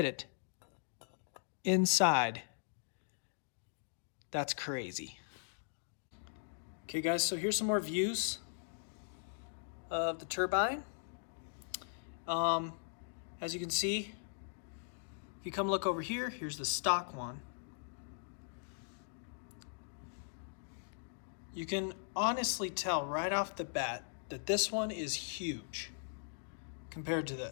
it inside. That's crazy. Okay guys, so here's some more views of the turbine. As you can see, if you come look over here, here's the stock one. You can honestly tell right off the bat that this one is huge compared to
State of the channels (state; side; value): silent; right; digital silence